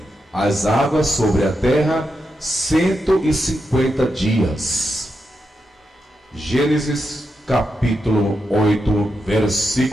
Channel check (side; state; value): both; normal; correlation 0.86